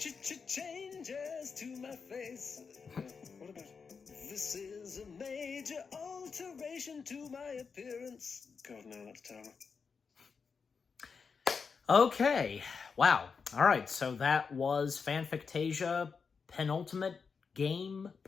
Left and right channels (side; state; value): right; quieter; 5.5 dB